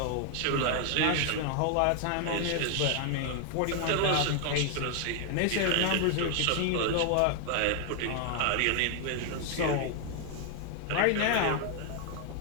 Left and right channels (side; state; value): both; different; correlation 0.00